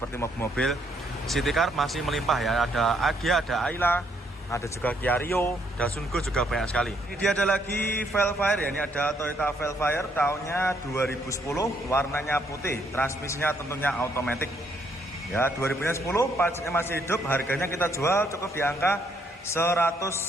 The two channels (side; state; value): both; normal; correlation 0.71